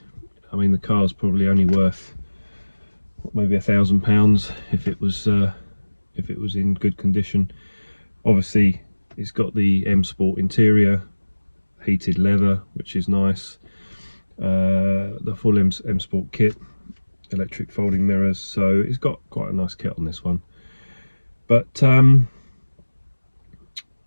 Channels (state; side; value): inverted; both; correlation -1.00